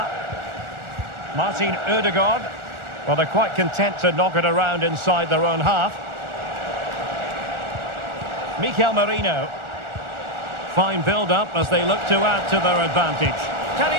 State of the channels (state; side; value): late; left; 1.4 ms